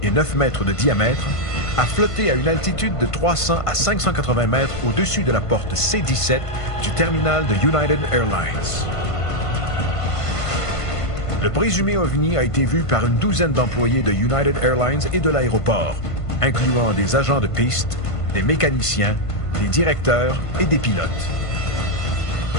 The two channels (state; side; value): late; right; 1.5 ms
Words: et 9 mètres de diamètre, a flotté à une altitude de 300 à 580 mètres au-dessus de la porte C-17 du terminal de United Airlines. Le présumé OVNI a été vu par une douzaine d'employés de United Airlines et de l'aéroport, incluant des agents de piste, des mécaniciens, des directeurs et des pilotes.